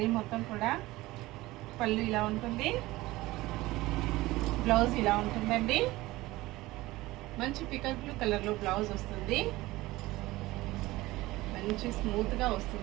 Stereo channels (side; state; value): left; quieter; 18.8 dB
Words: మొత్తం కూడా. పళ్ళు ఇలా ఉంటుంది, బ్లౌజ్ ఇలా ఉంటుందండి. మంచి పికల్ బ్లూ కలర్లో బ్లౌజ్ వస్తుంది. మంచి స్మూత్గా